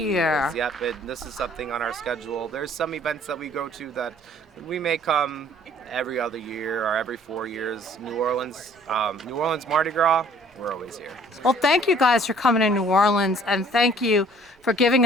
years, yep. This is something on our schedule. There's some events that we go to that we may come every other year or every 4 years. New Orleans Mardi Gras, we're always here. Well, thank you guys for coming to New Orleans, and thank you for giving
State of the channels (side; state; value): both; normal; correlation 0.55